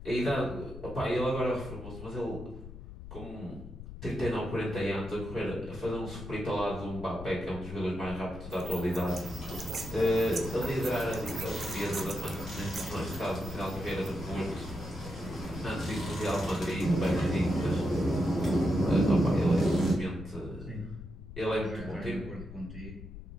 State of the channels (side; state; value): left; noise; rumble, 12 dB below the sound